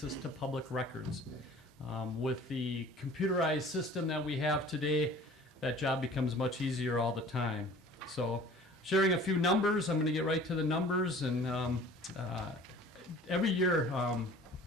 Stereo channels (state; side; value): normal; both; correlation 0.47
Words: to public records. With the computerized system that we have today, that job becomes much easier all the time. So, sharing a few numbers, I'm going to get right to the numbers. And every year,